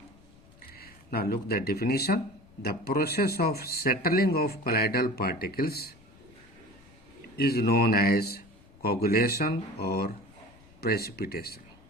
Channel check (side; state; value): left; noise; rumble, 26 dB below the sound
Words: Now look the definition. The process of settling of colloidal particles is known as coagulation or precipitation.